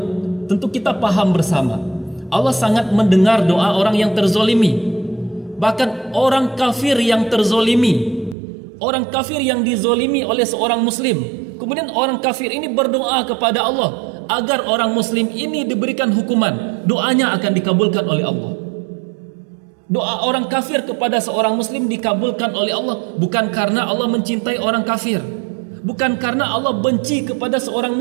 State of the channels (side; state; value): left; drops out; at 8.3 s